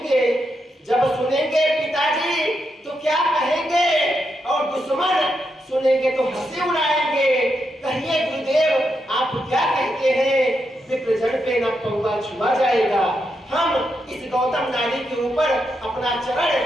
जब सुनेंगे पिताजी तो क्या कहेंगे, और दुश्मन सुनेंगे तो हंसी उड़ाएंगे। कहिए गुरुदेव आप क्या कहते हैं, विप्रजन पे न पौवा छुआ जाएगा। हम इस गौतम नारी के ऊपर अपना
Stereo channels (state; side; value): normal; both; correlation 0.83